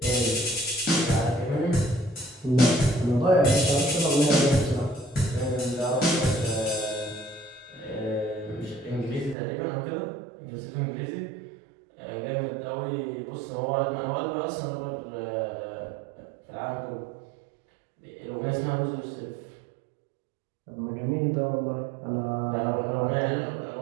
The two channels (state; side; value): drops out; left; at 9.3 s